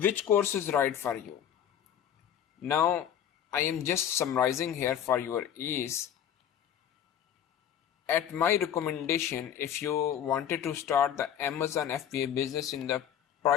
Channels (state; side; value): quieter; right; 9.7 dB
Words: course is right for you? Now I am just summarizing here for your ease. At my recommendation, if you wanted to start the Amazon FBA business in the